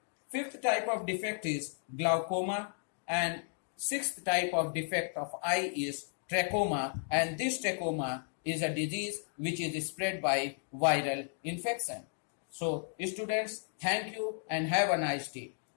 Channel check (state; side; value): silent; right; 55 dB below the other